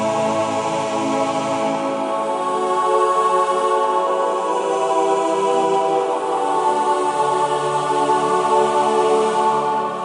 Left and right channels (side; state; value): both; identical; correlation 1.00